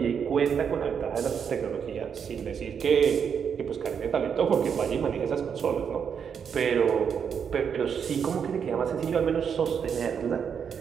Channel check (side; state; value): left; quieter; 7.2 dB